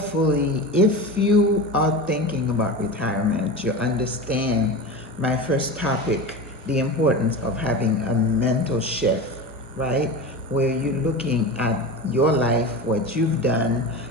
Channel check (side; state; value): both; normal; correlation 0.27